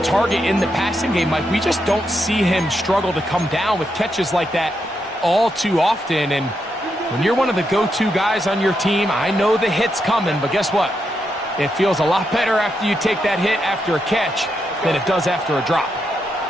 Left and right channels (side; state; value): both; normal; correlation 0.82